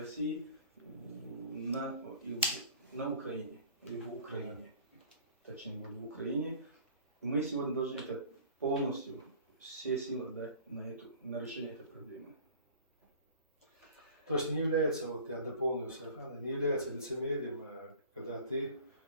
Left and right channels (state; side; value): inverted; both; correlation -0.45